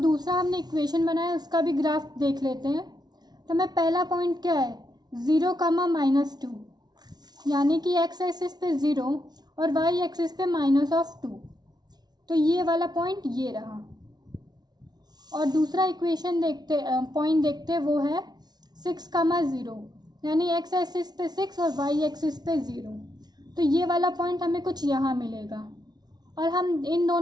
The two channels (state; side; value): late; left; 0.19 ms